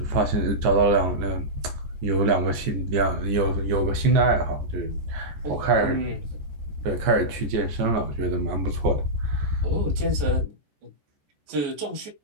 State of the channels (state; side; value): late; left; 14 ms